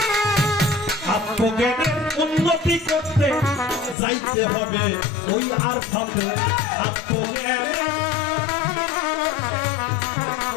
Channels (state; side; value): drops out; right; at 4.0 s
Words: আত্মজ্ঞানের উন্নতি করতে যাইতে হবে ওই আরফাতে।